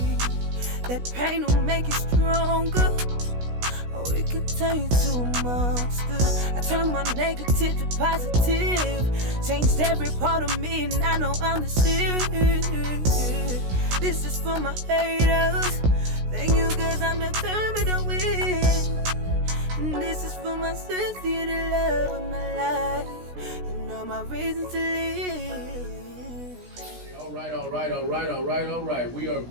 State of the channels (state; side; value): late; left; 16 ms